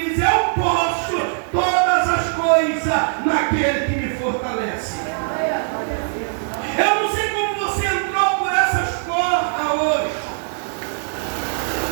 eu posso todas as coisas naquele que me fortalece.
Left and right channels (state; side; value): silent; left; digital silence